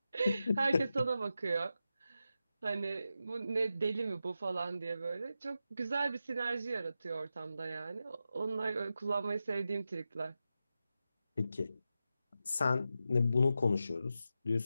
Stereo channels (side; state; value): both; inverted; correlation -0.90